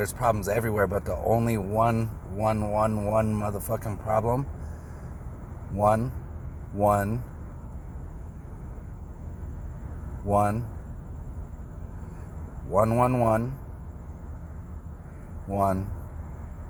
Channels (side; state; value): both; identical; correlation 1.00